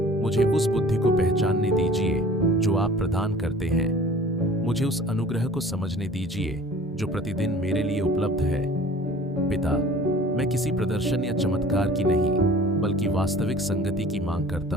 मुझे उस बुद्धि को पहचानने दीजिए जो आप प्रदान करते हैं। मुझे उस अनुग्रह को समझने दीजिए जो प्रतिदिन मेरे लिए उपलब्ध है। पिता, मैं किसी प्रदर्शन या चमत्कार की नहीं, बल्कि वास्तविक संगति की मांग करता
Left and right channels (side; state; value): both; normal; correlation 0.47